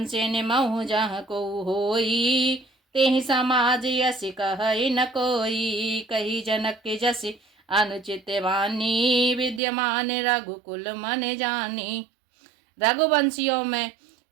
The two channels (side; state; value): left; drops out; at 9.6 s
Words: से निमहु जहाँ को होई, तेहि समाज यस कहि न कोई। कही जनक के जस अनुचित वाणी, विद्यमान रघुकुल मन जानी। रघुवंशियों में